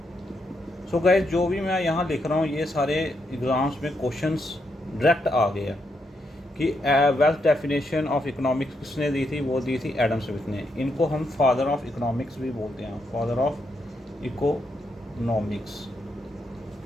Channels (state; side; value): normal; both; correlation 0.80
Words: सो गाइस, जो भी मैं यहाँ लिख रहा हूँ ये सारे एग्ज़ाम्स में क्वेश्चंस डायरेक्ट आ गए हैं कि वेल्थ डेफिनेशन ऑफ इकोनॉमिक्स किसने दी थी, वो दी थी एडम स्मिथ ने। इनको हम फादर ऑफ इकोनॉमिक्स भी बोलते हैं, फादर ऑफ इकोनॉमिक्स।